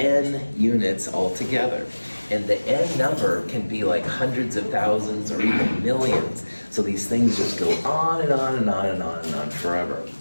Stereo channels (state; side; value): inverted; both; correlation -1.00